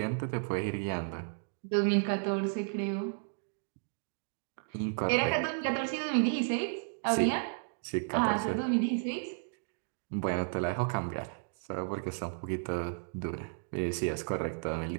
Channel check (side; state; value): left; silent; digital silence